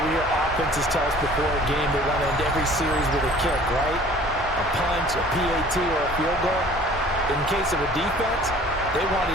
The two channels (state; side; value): normal; both; correlation 0.50